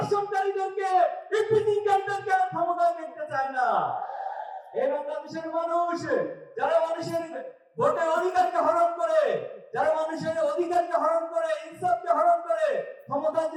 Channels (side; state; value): both; identical; correlation 1.00